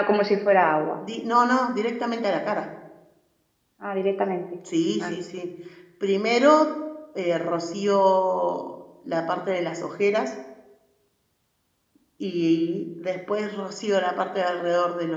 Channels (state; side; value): identical; both; correlation 1.00